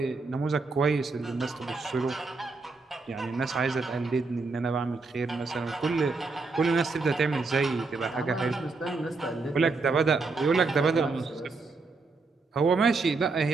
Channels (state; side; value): quieter; left; 4.0 dB